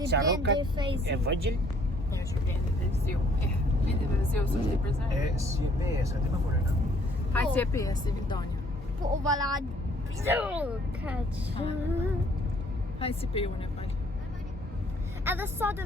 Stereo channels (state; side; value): normal; both; correlation 0.62